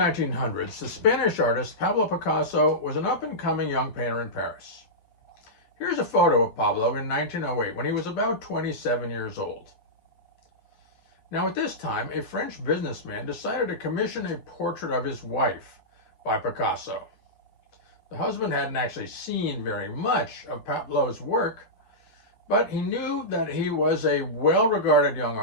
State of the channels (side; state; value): right; late; 11 ms